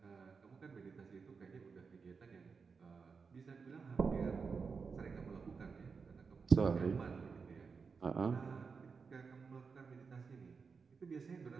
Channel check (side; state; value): left; quieter; 5.2 dB